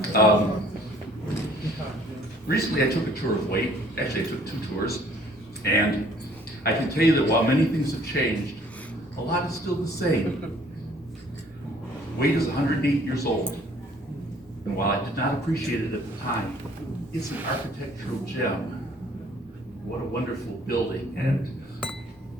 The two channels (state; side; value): noise; right; rumble, 27 dB below the sound